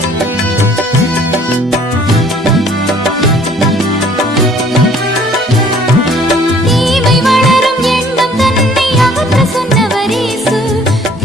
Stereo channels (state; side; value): normal; both; correlation 0.56